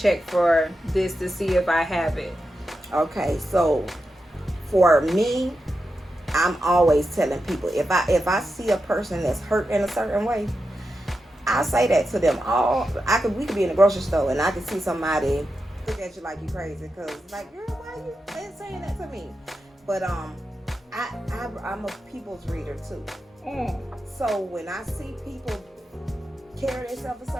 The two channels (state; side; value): normal; both; correlation 0.89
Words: for this to see if I have it? Okay, so for me, I'm always telling people if I see a person that's hurt in a certain way, I say that to them. We could be in the grocery store and I could see somebody look at you like you crazy because like, girl, why you saying that to me? But I'm a people's reader too. So when I see people carry themselves a